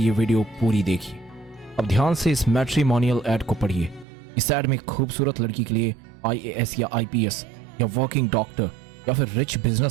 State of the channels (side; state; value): left; drops out; at 4.0 s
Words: वीडियो पूरी देखिए। अब ध्यान से इस मैट्रिमोनियल ऐड को पढ़िए। इस ऐड में खूबसूरत लड़की के लिए IAS या IPS या वर्किंग डॉक्टर या फिर रिच